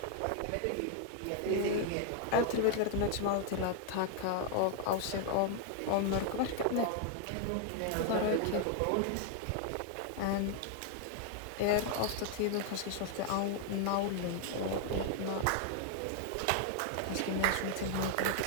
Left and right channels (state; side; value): different; both; correlation 0.00